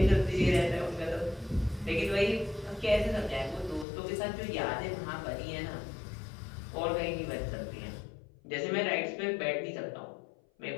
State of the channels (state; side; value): drops out; right; at 3.9 s